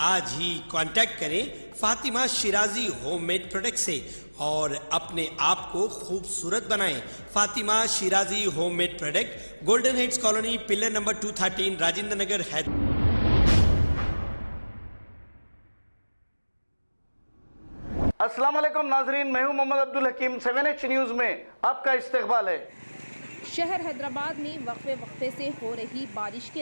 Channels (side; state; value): both; inverted; correlation -1.00